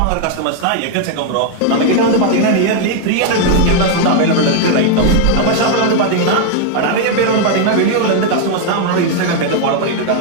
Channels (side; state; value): both; different; correlation 0.00